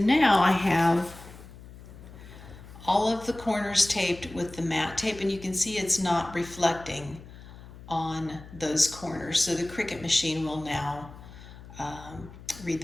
I have all of the corners taped with the matte tape, and you can see it's not reflecting on those corners. So the Cricut machine will now read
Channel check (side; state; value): left; noise; hum, 17 dB below the sound